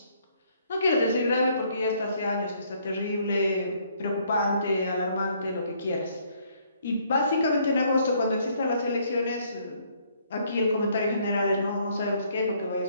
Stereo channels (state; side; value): inverted; both; correlation -0.66